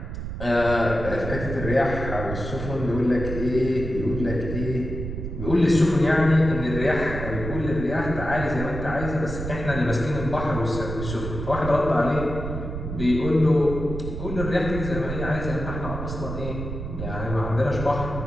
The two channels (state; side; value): noise; right; rumble, 6 dB below the sound